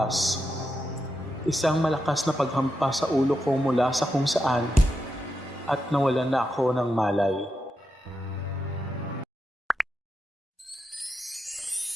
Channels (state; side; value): normal; both; correlation 0.86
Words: Isang malakas na paghampas sa ulo ko mula sa kung saan at nawalan na ako ng malay.